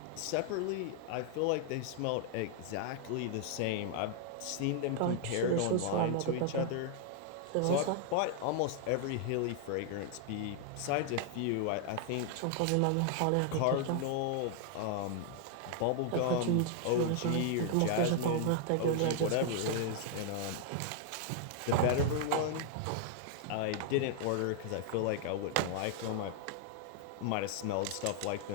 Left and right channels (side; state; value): both; different; correlation 0.00